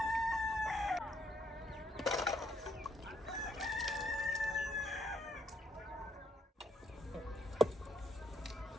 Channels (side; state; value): both; normal; correlation 0.73